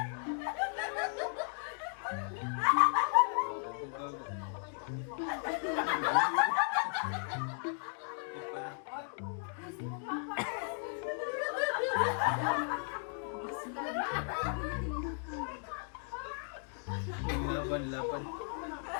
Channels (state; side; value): silent; right; 54 dB below the other